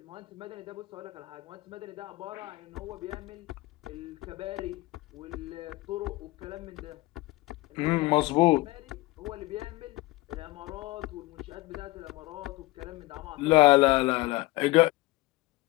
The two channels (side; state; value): right; quieter; 20.6 dB